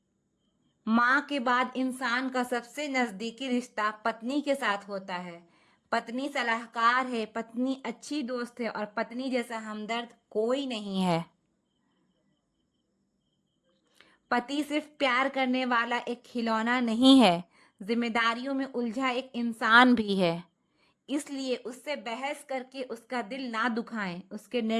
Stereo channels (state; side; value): identical; both; correlation 1.00